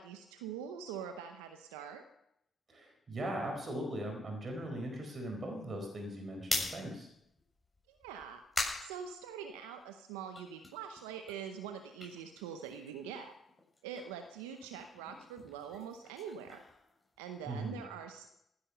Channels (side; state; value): both; normal; correlation 0.66